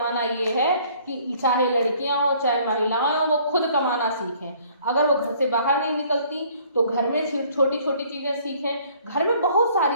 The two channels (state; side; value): inverted; both; correlation -0.58